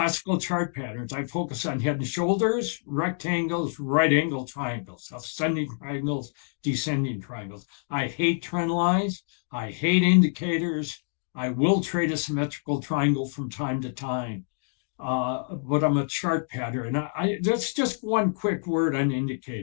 chart patterns. I focus on head and shoulders, rectangles, right angle triangles, ascending triangles, descending triangles. I hate trend lines. I hate indicators. I will trade a symmetrical triangle from time to time. But I'm a chart pattern. That's just one quick word on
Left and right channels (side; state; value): right; silent; digital silence